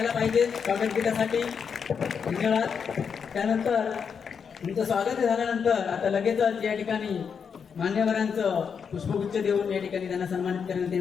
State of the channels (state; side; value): quieter; right; 6.6 dB